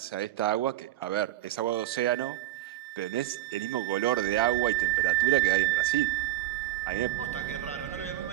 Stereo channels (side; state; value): left; quieter; 14.7 dB